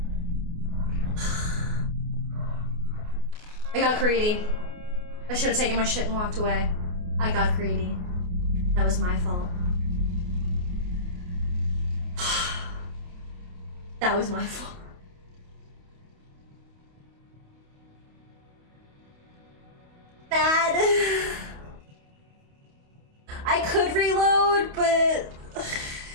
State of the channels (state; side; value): late; left; 28 ms